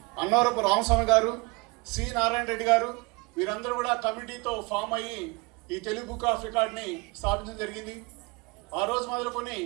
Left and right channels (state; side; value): quieter; left; 26.9 dB